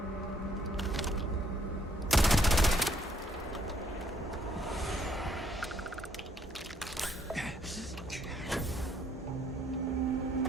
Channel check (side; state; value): both; normal; correlation 0.68